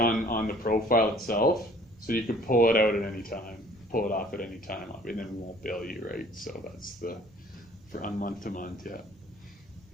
the profile itself, so you can pull it out at any time. Pull it off at any time, and then we won't bill you, right? So that's for on month to month, yeah.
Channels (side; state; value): both; normal; correlation 0.54